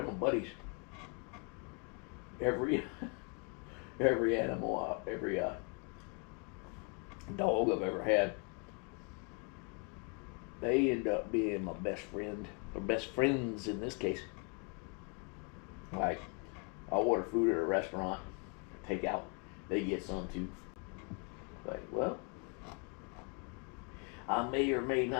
my buddies. Every animal, every dog I've ever had, they end up being my best friend, or best friends in this case. Like, I'll order food at a restaurant, take out, they get some too. Like, well, I may or may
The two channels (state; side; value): quieter; right; 35.0 dB